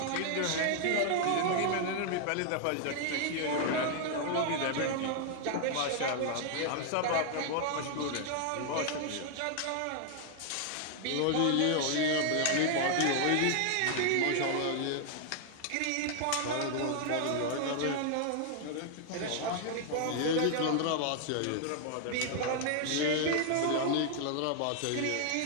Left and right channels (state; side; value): different; both; correlation 0.00